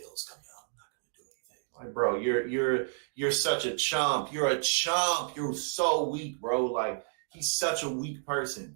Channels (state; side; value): silent; left; digital silence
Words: come out. I'm not gonna do anything. Like, bro, you're such a chump. You're a chump. You're so weak, bro. Like, he's such a weak